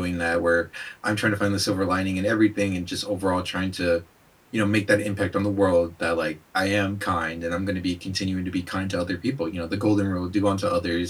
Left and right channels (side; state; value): both; identical; correlation 1.00